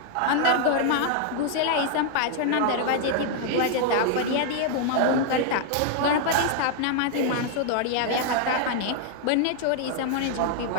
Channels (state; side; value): different; both; correlation 0.00